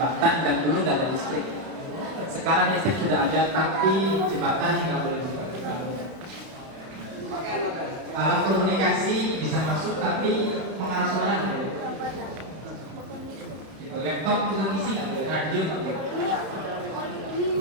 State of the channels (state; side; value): late; left; 31 ms